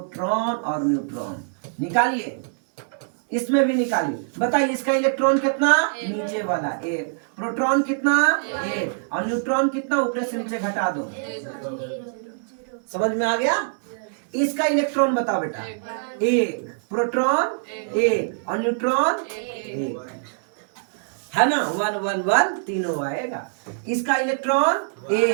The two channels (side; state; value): left; silent; digital silence